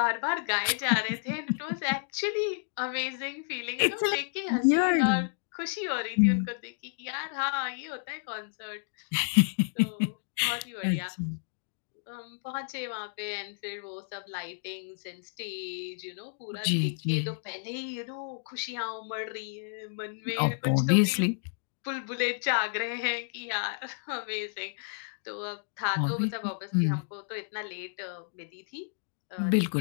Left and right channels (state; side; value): silent; right; digital silence